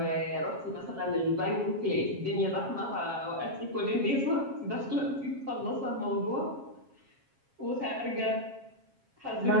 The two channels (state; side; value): late; left; 7.4 ms